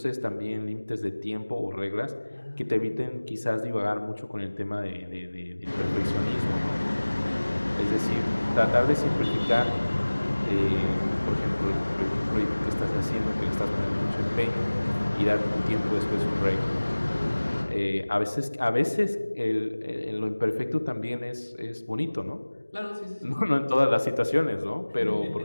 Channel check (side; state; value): both; inverted; correlation -1.00